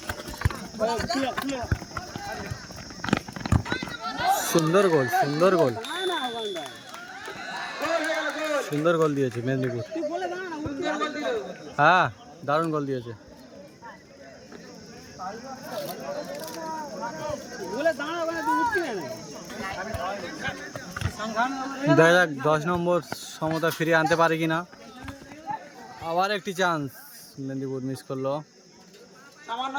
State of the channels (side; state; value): both; identical; correlation 1.00